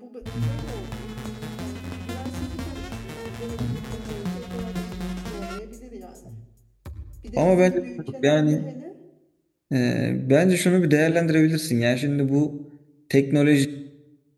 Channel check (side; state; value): both; identical; correlation 1.00